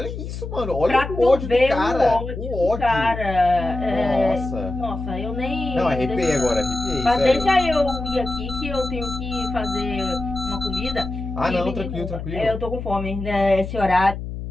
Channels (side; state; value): left; noise; hum, 7 dB below the sound